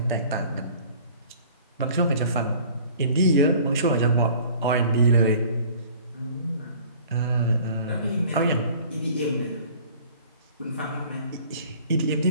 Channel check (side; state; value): both; inverted; correlation -0.49